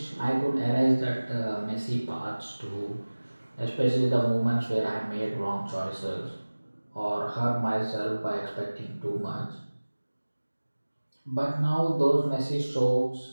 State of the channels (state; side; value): inverted; both; correlation -1.00